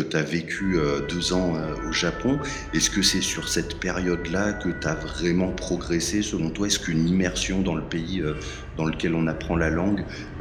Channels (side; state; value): both; identical; correlation 1.00